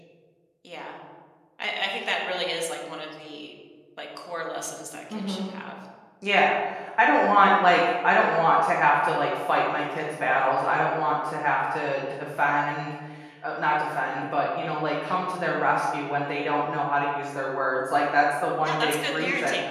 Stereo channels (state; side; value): identical; both; correlation 1.00